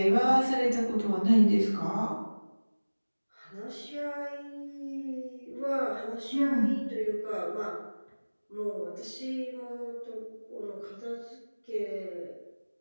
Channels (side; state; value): both; inverted; correlation -1.00